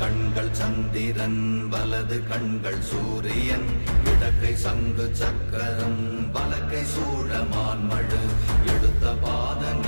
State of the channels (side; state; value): both; inverted; correlation -1.00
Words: சந்திரன் வலது கண்கள் சூரியன் இடக்கை சங்கு சக்கரம் வலக்கை சூழமான்மழு எடுத்த பாத